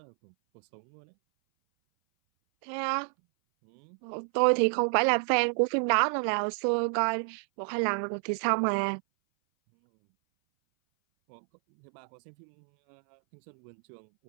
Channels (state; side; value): silent; left; 59 dB below the other